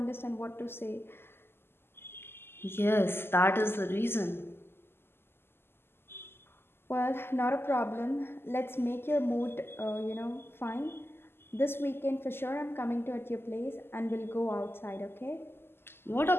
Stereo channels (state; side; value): late; right; 0.11 ms